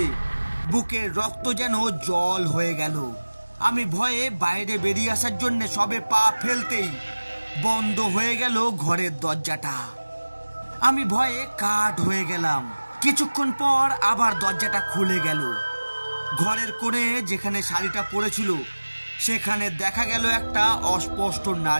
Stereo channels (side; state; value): both; inverted; correlation -1.00